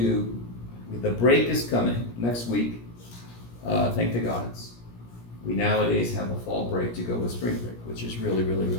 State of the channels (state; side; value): late; right; 17 ms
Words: the break is coming next week. Thank the gods. We nowadays have a fall break to go with spring break, which is really, really,